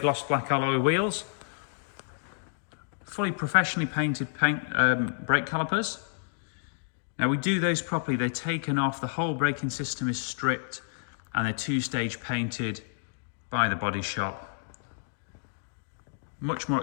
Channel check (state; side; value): silent; right; digital silence